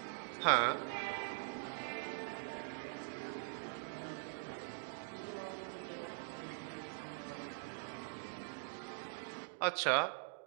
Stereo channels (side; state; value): left; silent; digital silence